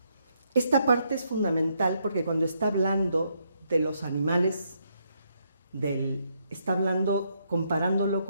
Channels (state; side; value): inverted; both; correlation -0.76